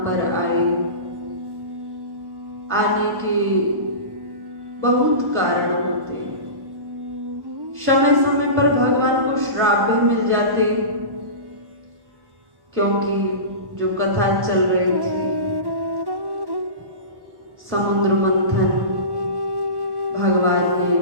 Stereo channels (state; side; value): late; left; 1.1 ms